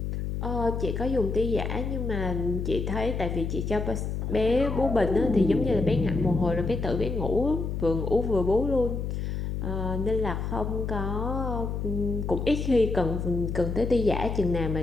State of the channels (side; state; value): left; noise; hum, 3 dB below the sound